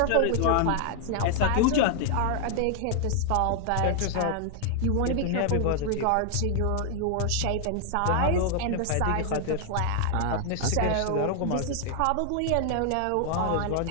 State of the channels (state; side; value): different; both; correlation 0.00